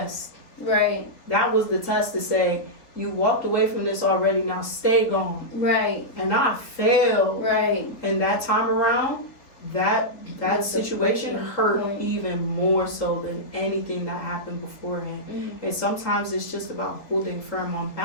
Right. That was the test to say, you walked away from this already, now stay gone. Right. And I failed. Right. And that time around, that situation hurt even more so than anything that happened beforehand. And sometimes it's just about holding firm on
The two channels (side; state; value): right; late; 3.6 ms